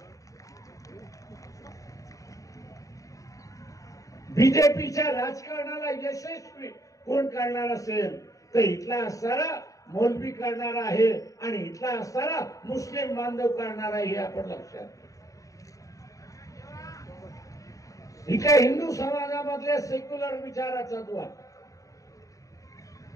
बीजेपीच्या राजकारणाला यशस्वी कोण करणार असेल तर इथला असणारा मौलवी करणार आहे आणि इथला असणारा मुस्लिम बांधव करणार आहे, हे आपण लक्षात घ्या. इथल्या हिंदू समाजामधल्या सेक्युलर विचाराचा द्वार,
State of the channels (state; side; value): late; right; 0.16 ms